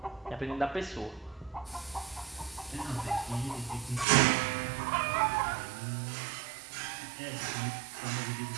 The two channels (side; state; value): left; drops out; at 4.0 s